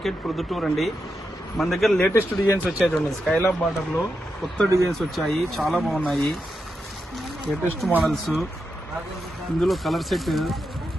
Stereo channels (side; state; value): both; normal; correlation 0.86